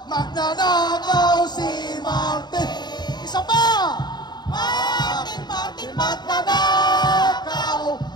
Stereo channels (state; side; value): late; right; 0.21 ms